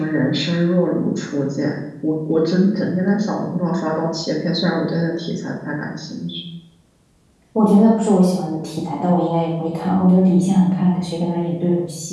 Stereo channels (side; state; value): both; identical; correlation 1.00